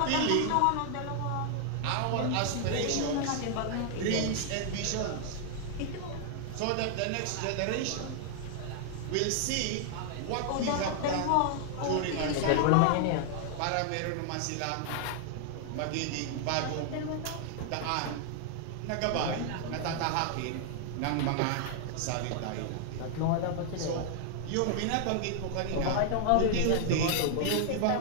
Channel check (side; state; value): both; different; correlation 0.00